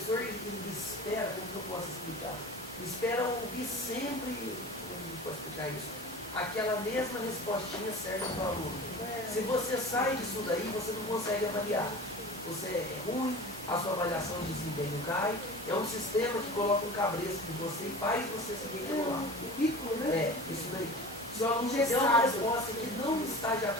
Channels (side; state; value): both; normal; correlation 0.36